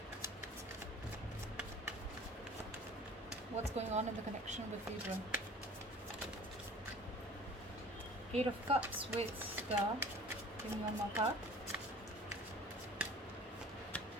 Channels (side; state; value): both; normal; correlation 0.45